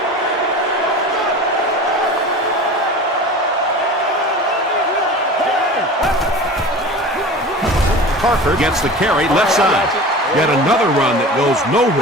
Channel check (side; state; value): both; normal; correlation 0.36